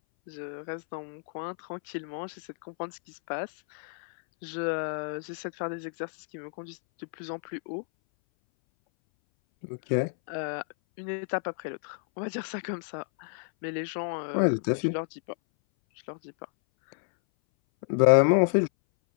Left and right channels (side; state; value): right; silent; 58 dB below the other